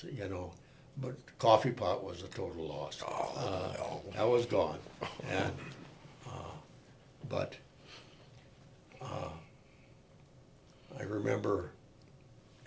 you know, but the coffee pot was a total loss. No. That was gone. And but I remember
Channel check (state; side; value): identical; both; correlation 1.00